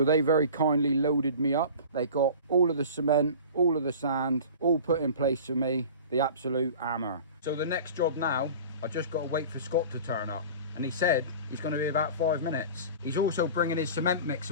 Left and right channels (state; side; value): inverted; both; correlation -0.39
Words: they very kindly loaded me up. They got all of the cement, all of the sand, all put in place for me. The absolute hammer. So the next job now, I just got to wait for Scott to turn up. And he said he's going to be about 5 minutes. He's also bringing his cement